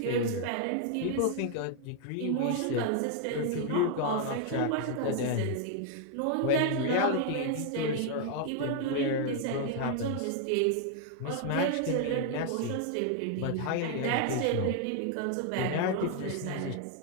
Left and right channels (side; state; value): both; different; correlation 0.00